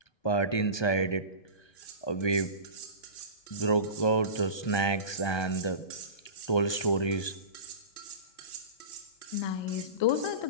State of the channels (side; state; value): right; late; 1.2 ms